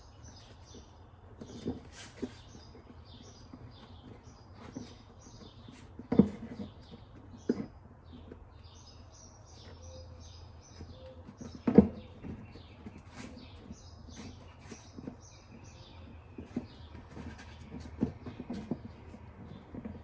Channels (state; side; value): identical; both; correlation 1.00